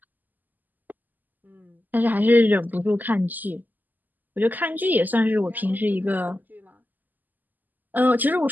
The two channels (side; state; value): left; late; 0.085 ms